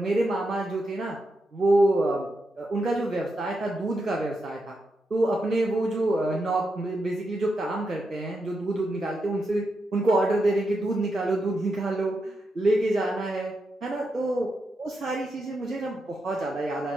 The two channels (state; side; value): normal; both; correlation 0.85